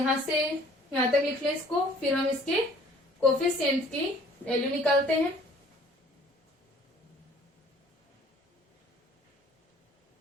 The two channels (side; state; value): both; normal; correlation 0.55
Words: से यहां तक लिख लें इसको, फिर हम इसके कोफिशिएंट की वैल्यू निकालते हैं।